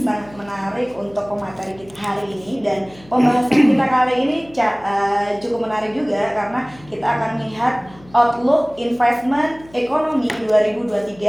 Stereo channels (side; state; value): left; noise; hum, 24 dB below the sound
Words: menarik untuk pemateri kita hari ini. Dan pembahasan kita kali ini cukup menarik juga karena kita akan melihat outlook investment ekonomi